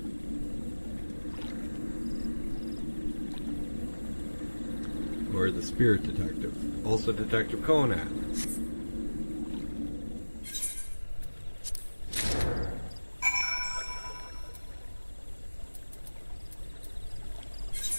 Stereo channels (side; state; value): both; inverted; correlation -1.00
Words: Or the Spirit Detective. Also Detective Conan.